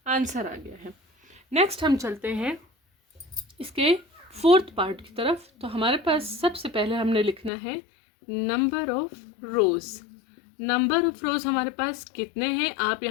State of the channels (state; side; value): drops out; right; at 7.5 s